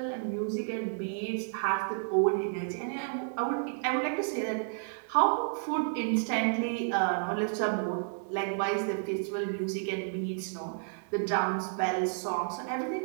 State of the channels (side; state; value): left; silent; 57 dB below the other